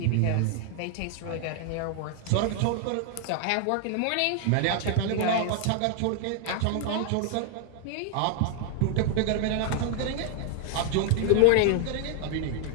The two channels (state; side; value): different; both; correlation 0.00